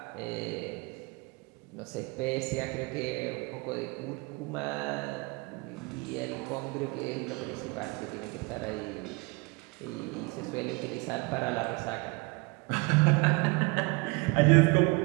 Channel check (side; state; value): left; quieter; 27.7 dB